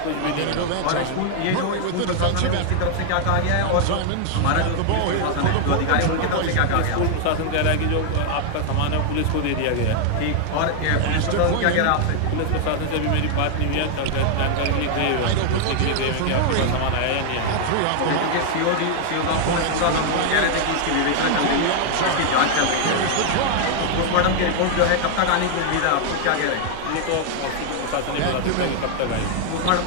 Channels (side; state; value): both; different; correlation 0.00